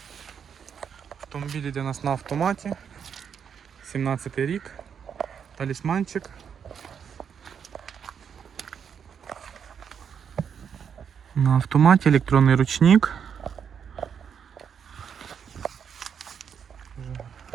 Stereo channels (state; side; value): quieter; left; 7.4 dB